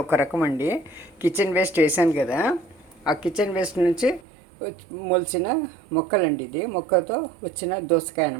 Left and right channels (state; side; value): drops out; left; at 4.2 s